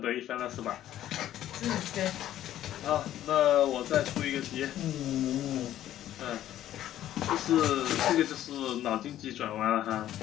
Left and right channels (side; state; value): right; quieter; 12.5 dB